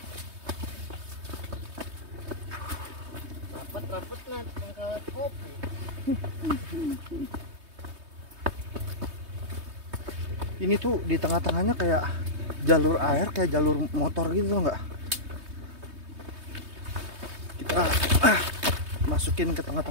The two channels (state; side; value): late; left; 3.2 ms